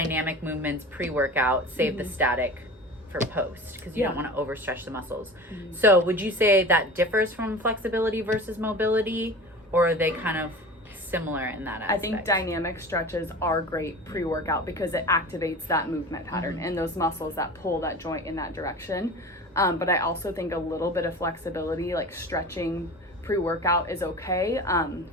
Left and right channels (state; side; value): normal; both; correlation 0.35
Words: movements pre-workout, save the static for post because you Yeah. don't want to overstretch the muscles. So would you say that differs from flexibility versus mobility, or are they kind of similar in that aspect? I think dynamic stretches are great pre-workout because it activates that movement pattern and those muscles that pull that joint in that direction. But I also think a little bit of flexibility, like stretching pre-workout, is okay.